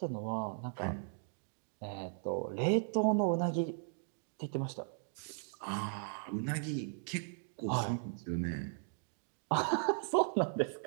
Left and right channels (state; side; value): silent; left; digital silence